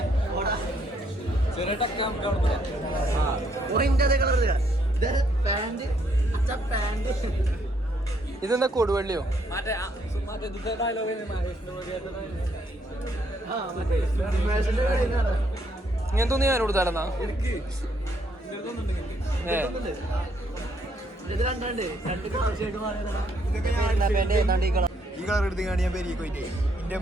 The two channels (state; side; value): normal; both; correlation 0.71